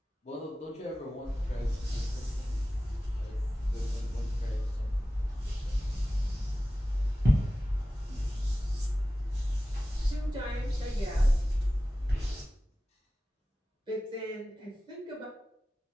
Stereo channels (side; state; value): both; normal; correlation 0.96